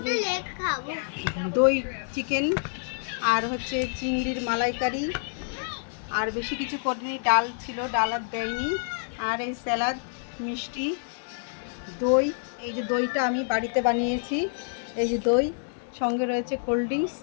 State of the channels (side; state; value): right; silent; 60 dB below the other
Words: দই চিকেন আর হচ্ছে চিংড়ির মালাইকারি, আর বেশি কিছু করিনি। ডাল ছিল, ডাল আর দেয়নি। আর এই স্যালাড, মিষ্টি, দই। এই যে দইটা আমি বাড়িতে বানিয়েছি। এই যে দই, সঙ্গে রয়েছে কোল্ড ড্রিঙ্কস,